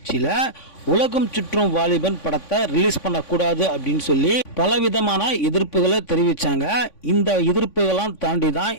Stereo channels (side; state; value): right; late; 3.5 ms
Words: உலகம் சுற்றும் வாலிபன் படத்தை ரிலீஸ் பண்ணக்கூடாது அப்படின்னு சொல்லி பலவிதமான எதிர்ப்புகளை தெரிவிச்சாங்க. இந்த எதிர்ப்புகளாம் தாண்டி தான்